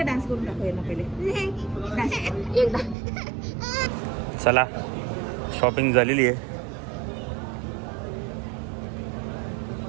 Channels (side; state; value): left; drops out; at 3.0 s